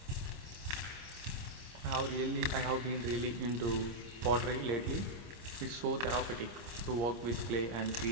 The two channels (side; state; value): left; late; 26 ms